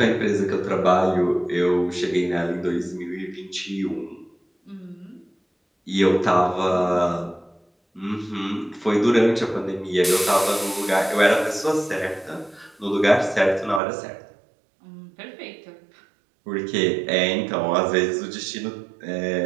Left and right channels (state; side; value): drops out; left; at 13.8 s